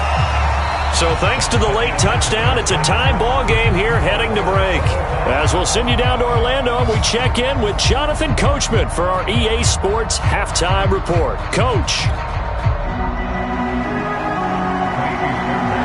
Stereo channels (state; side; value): identical; both; correlation 1.00